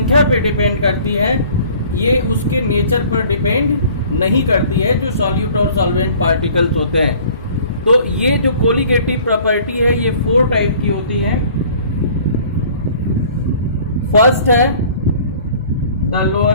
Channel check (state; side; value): inverted; both; correlation -0.51